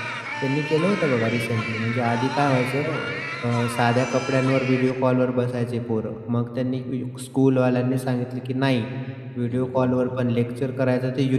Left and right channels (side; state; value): both; identical; correlation 1.00